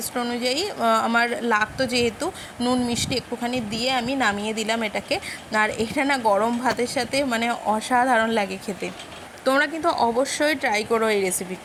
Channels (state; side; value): identical; both; correlation 1.00